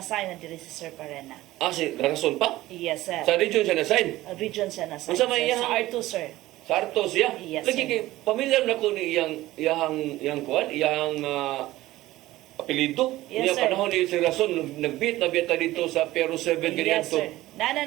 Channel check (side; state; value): left; quieter; 16.8 dB